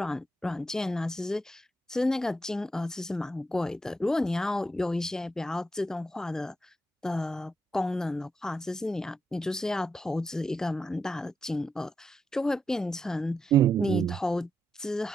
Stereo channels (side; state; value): both; normal; correlation 0.83